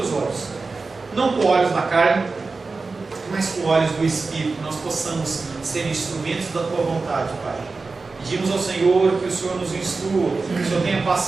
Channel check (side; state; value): left; quieter; 4.0 dB